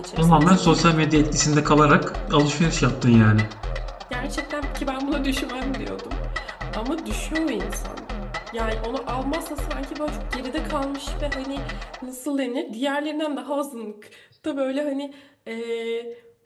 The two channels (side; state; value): both; identical; correlation 1.00